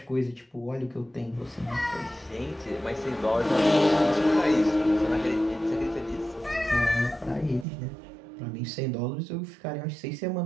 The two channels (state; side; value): drops out; left; at 7.7 s